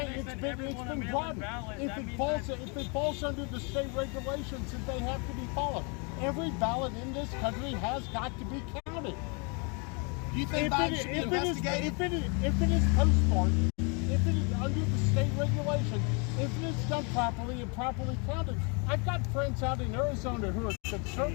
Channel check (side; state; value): right; quieter; 34.2 dB